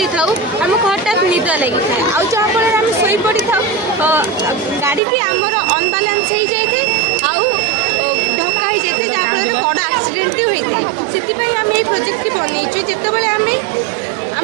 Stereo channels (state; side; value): drops out; left; at 5.0 s